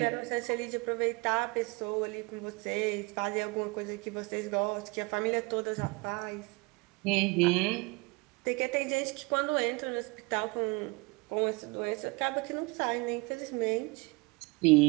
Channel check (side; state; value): left; quieter; 27.1 dB